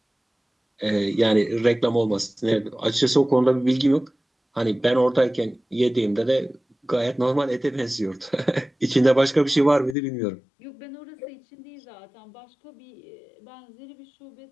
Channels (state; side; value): drops out; right; at 10.0 s